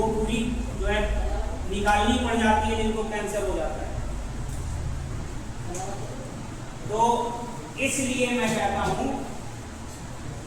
पूरी जो है निकालनी पड़ जाती है, जिनको कैंसर हो जाता है। तो इसलिए मैं कहता हूं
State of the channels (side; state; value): both; identical; correlation 1.00